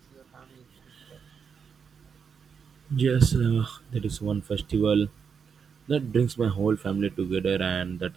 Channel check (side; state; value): left; quieter; 6.4 dB